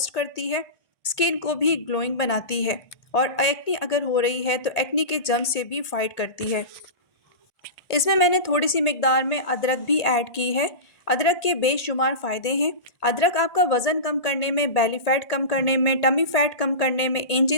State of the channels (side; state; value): right; late; 1.8 ms